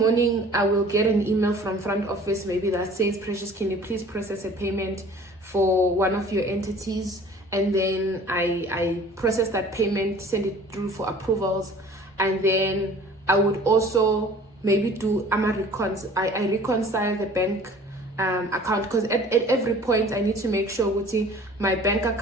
I will get an email from front office, maybe that says, Precious, can you please process a payment for one of your entities? And then I process that payment, send it through for approvals, and then I would also maybe do I reconcile the bank account, because at every point I need to make sure my bank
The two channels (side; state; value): both; normal; correlation 0.48